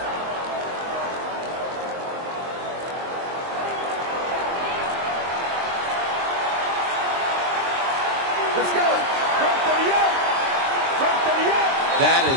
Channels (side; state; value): left; late; 23 ms